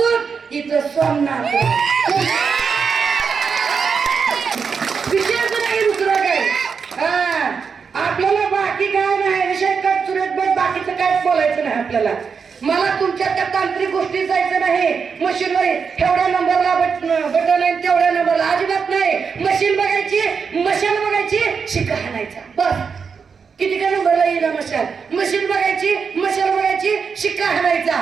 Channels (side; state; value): left; quieter; 5.8 dB